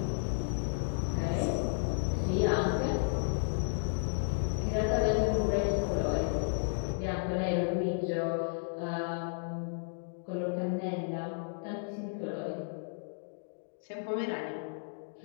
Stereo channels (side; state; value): right; silent; digital silence